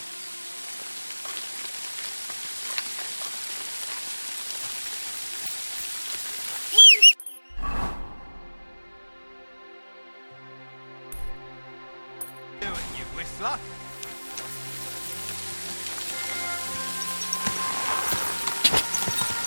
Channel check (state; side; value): inverted; both; correlation -1.00